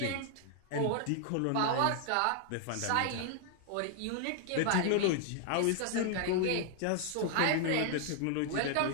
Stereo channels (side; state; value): both; different; correlation 0.00